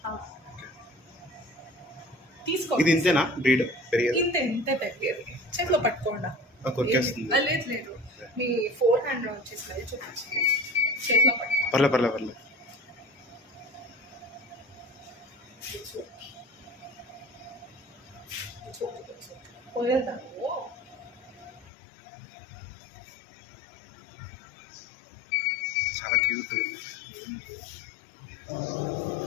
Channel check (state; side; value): drops out; right; at 21.7 s